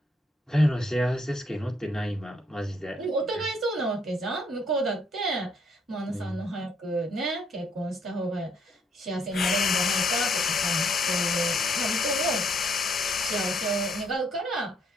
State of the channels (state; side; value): normal; both; correlation 0.69